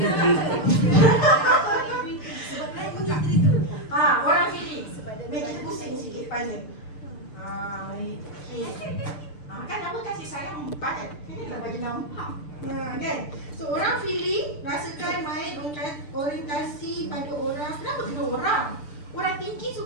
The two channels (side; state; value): right; late; 6.8 ms